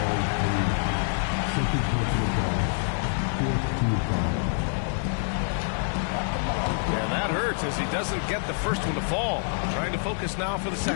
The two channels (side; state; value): right; silent; digital silence